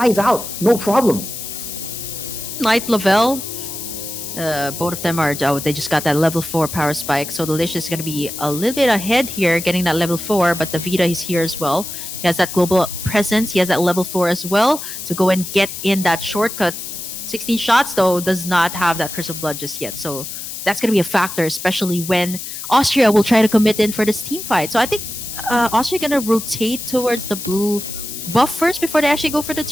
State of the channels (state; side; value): noise; left; hiss, 8 dB below the sound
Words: out, no problem. Night Lavelle, both of them are, oh, they just got that level 4 power spike. So Delicious is going to be a little bit ahead here, getting that level 4, but the Vita is here as well. He has that global presence. He has that level 4 as well to go and get in that shortcut. 16 shots, though, does not have that Curse of Blood just yet. So that's going to be a factor, especially when Austria will try to commit in for this team fight. So I think Austria going to rotate towards the blue buff first before they actually go for the